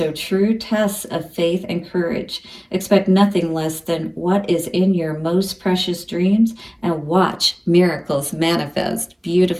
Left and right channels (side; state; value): both; identical; correlation 1.00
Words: true tests of faith and courage. Expect nothing less than what is in your most precious dreams and watch miracles manifest.